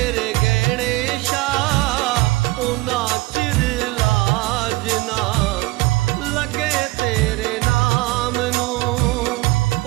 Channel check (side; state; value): left; quieter; 20.4 dB